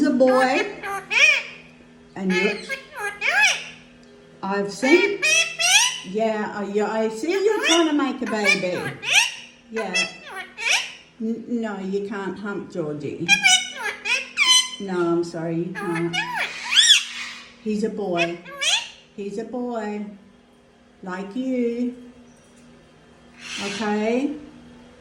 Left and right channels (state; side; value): identical; both; correlation 1.00